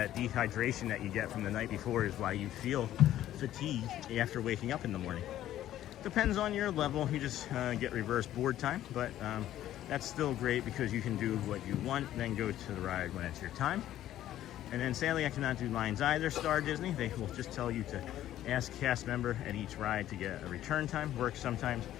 dehydration that you get from the night before is why you feel fatigued after waking up in the morning. Depends on your level. You just get reverse board time, but that's still great because you can do what you want, then go to the ride when it's your time. And then sadly, I cannot do lines either, Star Disney. They will just tell you to ask cast member at each ride to get a return time, works sometimes,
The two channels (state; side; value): quieter; right; 12.8 dB